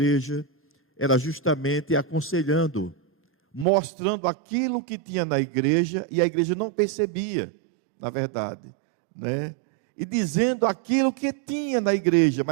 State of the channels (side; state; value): left; drops out; at 3.7 s